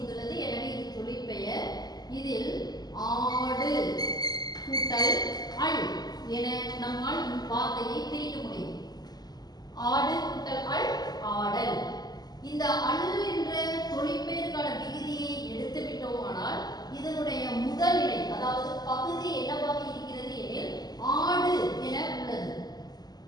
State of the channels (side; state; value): right; late; 0.20 ms